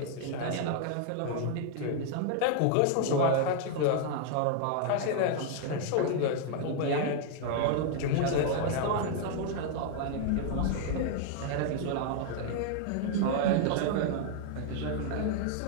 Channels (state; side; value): different; both; correlation 0.00